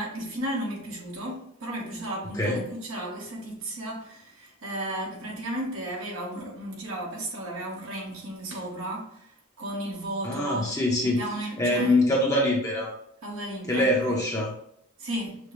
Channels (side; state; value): both; normal; correlation 0.42